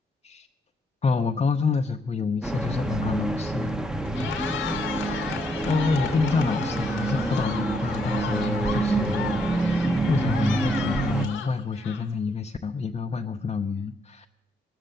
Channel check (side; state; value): both; normal; correlation 0.75